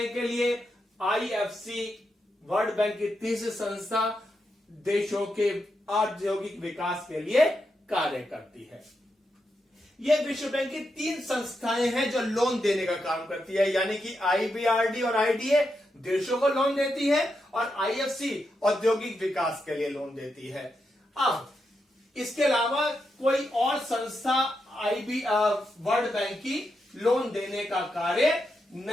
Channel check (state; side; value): normal; both; correlation 0.85